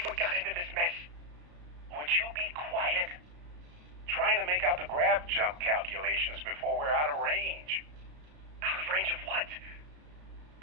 Jump calculations before we're out of range. Out of range of what?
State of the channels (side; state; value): left; late; 33 ms